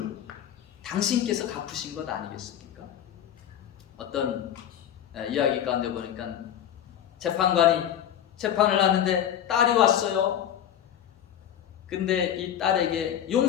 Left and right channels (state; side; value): quieter; right; 10.3 dB